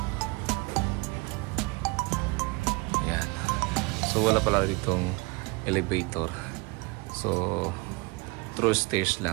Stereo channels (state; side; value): quieter; left; 26.4 dB